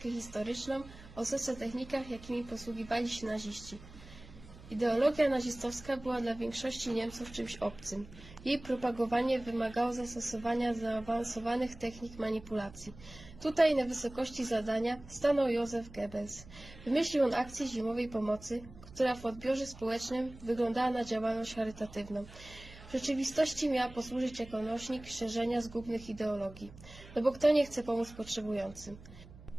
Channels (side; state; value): right; noise; hum, 18 dB below the sound